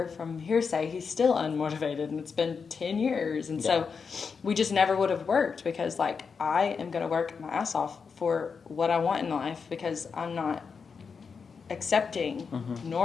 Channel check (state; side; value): quieter; right; 5.6 dB